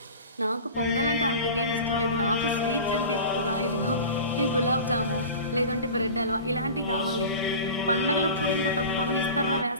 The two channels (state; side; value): inverted; both; correlation -0.35